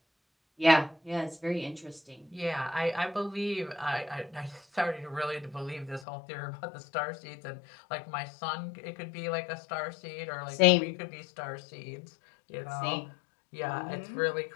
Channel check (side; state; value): right; drops out; at 6.1 s